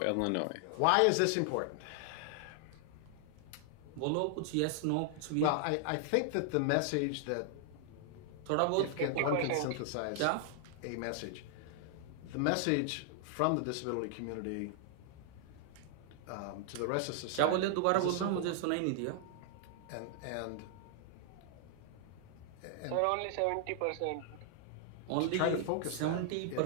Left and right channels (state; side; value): different; both; correlation -0.01